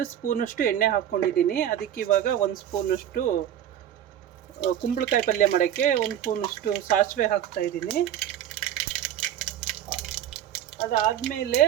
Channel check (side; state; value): left; quieter; 10.7 dB